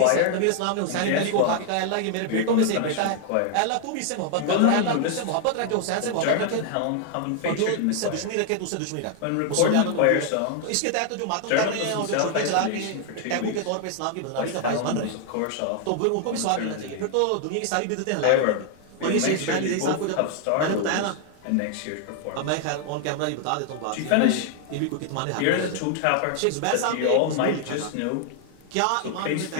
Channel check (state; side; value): different; both; correlation 0.00